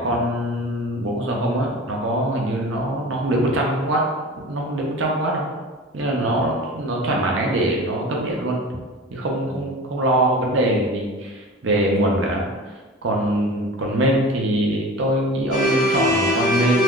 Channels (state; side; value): normal; both; correlation 0.37